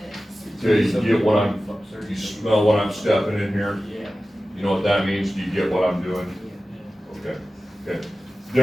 this. Okay, you get what you smell what I'm stepping in here? Yeah. You know what that means? Do you get what I'm doing? Okay, okay.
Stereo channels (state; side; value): normal; both; correlation 0.95